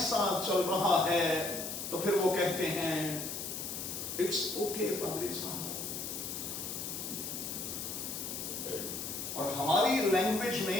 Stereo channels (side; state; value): left; noise; hiss, 5 dB below the sound